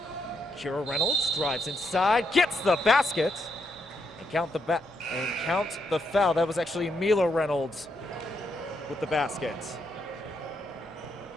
Kira Reynolds drives inside, gets the basket, and count the foul. That was actually Mila Reynolds with the basket.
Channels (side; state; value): both; normal; correlation 0.79